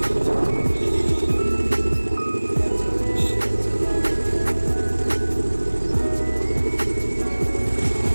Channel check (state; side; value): inverted; both; correlation -1.00